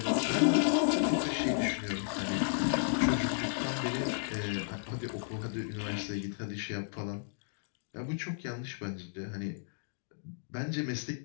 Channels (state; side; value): silent; right; digital silence